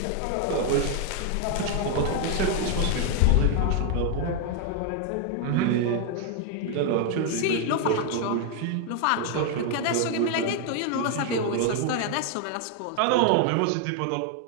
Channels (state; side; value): different; both; correlation 0.01